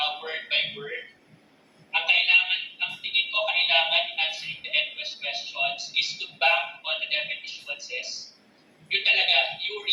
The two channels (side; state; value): both; identical; correlation 1.00